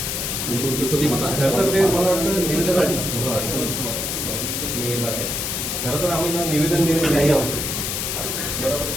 खरं तर आम्हाला निवेदन देण्याची काही आवश्यकता बरोबर.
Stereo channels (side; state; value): left; noise; hiss, 2 dB below the sound